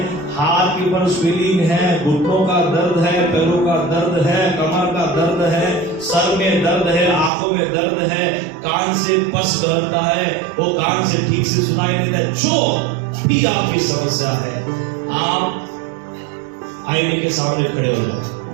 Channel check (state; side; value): drops out; left; at 7.3 s